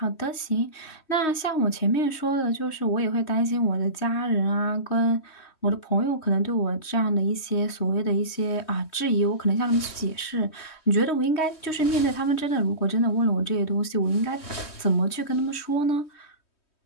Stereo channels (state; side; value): late; right; 3.2 ms